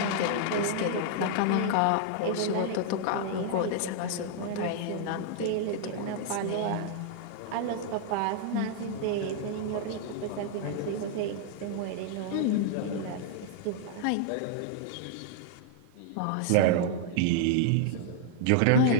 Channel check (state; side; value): different; both; correlation -0.01